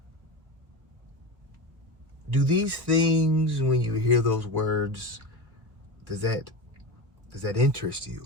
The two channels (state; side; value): late; left; 1.2 ms